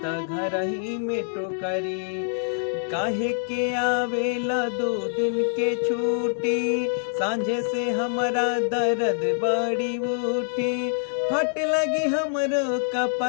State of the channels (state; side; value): silent; right; 62 dB below the other